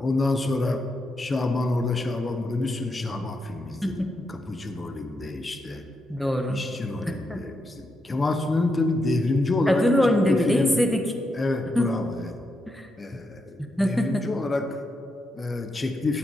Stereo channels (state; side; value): normal; both; correlation 0.83